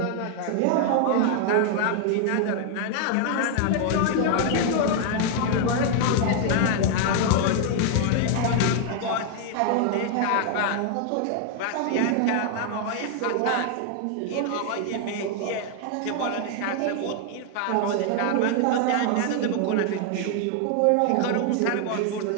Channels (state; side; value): different; both; correlation 0.00